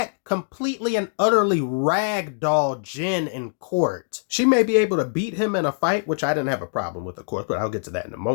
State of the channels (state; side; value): silent; right; digital silence